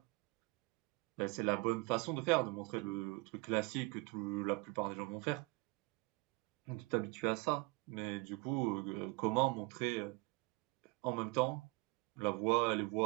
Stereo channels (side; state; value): left; quieter; 25.6 dB